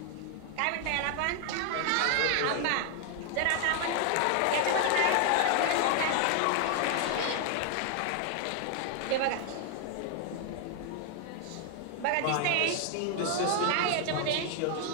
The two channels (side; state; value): both; different; correlation 0.00